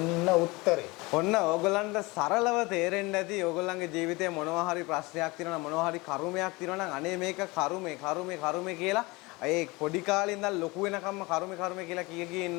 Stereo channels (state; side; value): quieter; right; 24.0 dB